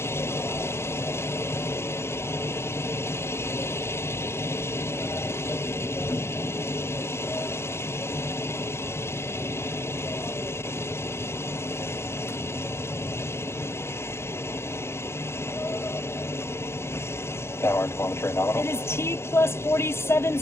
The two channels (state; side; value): late; right; 0.12 ms